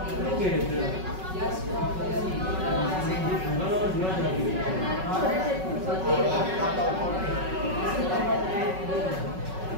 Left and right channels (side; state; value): left; late; 5.4 ms